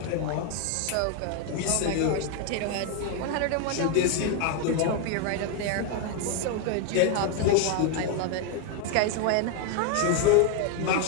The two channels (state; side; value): different; both; correlation 0.01